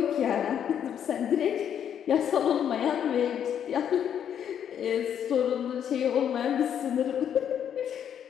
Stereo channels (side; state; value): right; quieter; 9.0 dB